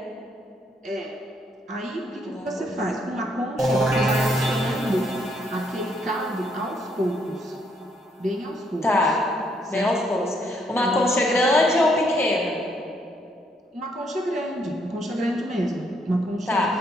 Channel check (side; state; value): both; normal; correlation 0.72